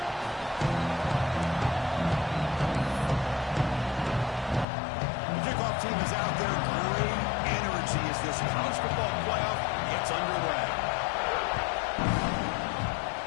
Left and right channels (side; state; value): right; drops out; at 4.7 s